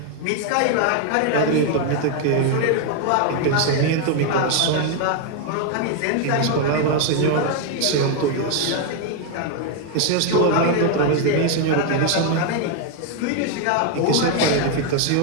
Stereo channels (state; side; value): different; both; correlation 0.01